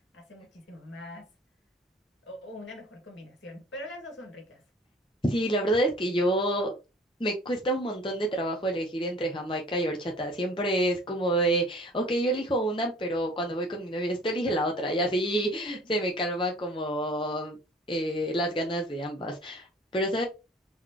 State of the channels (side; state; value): both; normal; correlation 0.49